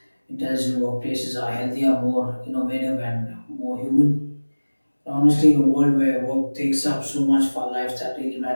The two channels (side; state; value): both; inverted; correlation -1.00